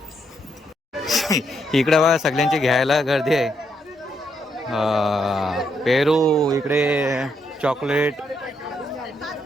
इकडे बघा सगळ्यांची घ्यायला गर्दी आहे पेरू इकडे चॉकलेट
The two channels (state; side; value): normal; both; correlation 0.77